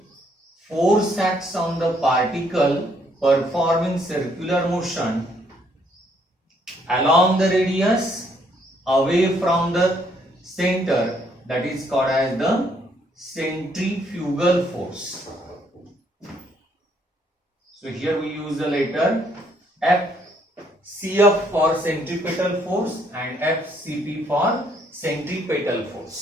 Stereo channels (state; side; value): normal; both; correlation 0.68